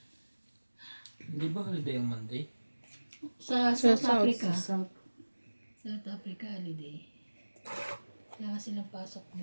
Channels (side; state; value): both; inverted; correlation -1.00